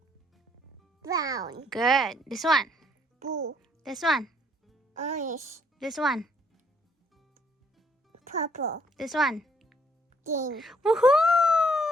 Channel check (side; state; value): both; normal; correlation 0.67